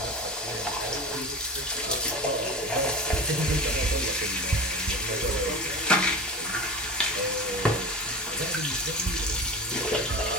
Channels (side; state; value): both; normal; correlation 0.29